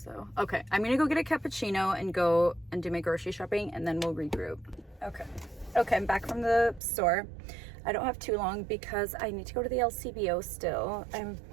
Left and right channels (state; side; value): drops out; left; at 6.8 s